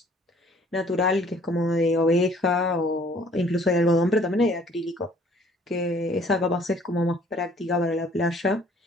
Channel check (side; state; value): both; normal; correlation 0.57